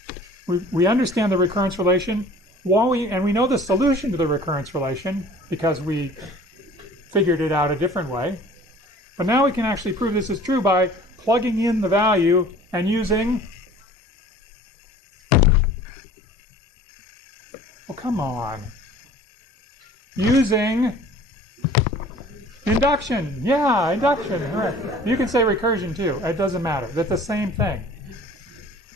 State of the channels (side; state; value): both; normal; correlation 0.48